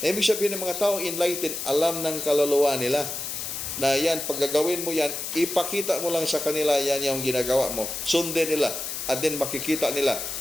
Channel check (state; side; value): noise; left; hiss, 5 dB below the sound